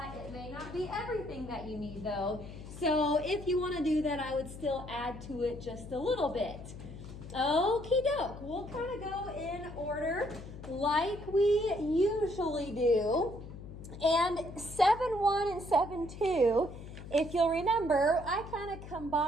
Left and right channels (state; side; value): noise; left; hum, 13 dB below the sound